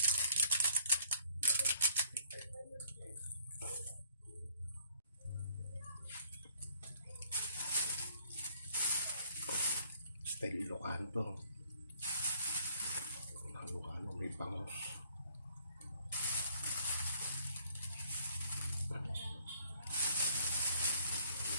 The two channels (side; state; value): both; inverted; correlation -0.63